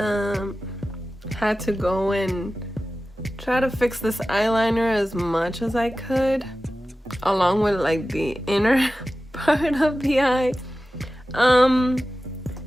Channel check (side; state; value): both; normal; correlation 0.95